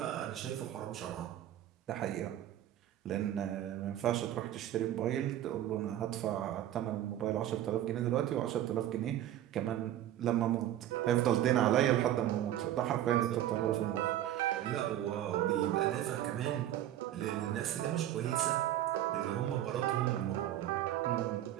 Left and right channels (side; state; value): left; quieter; 12.4 dB